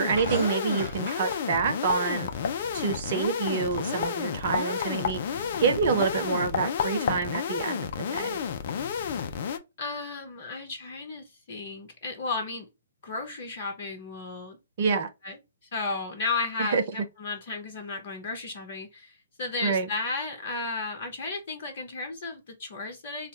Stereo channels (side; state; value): both; inverted; correlation -0.50